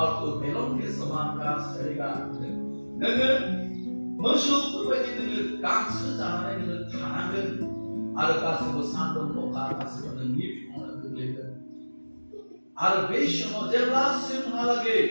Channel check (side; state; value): both; inverted; correlation -1.00